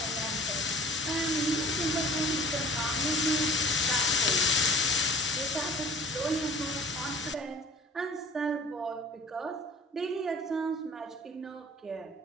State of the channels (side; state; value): both; normal; correlation 0.48